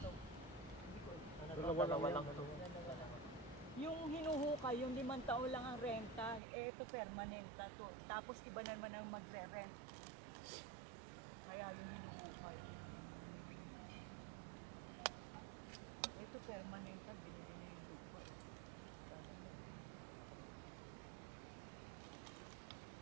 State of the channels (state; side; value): drops out; left; at 6.4 s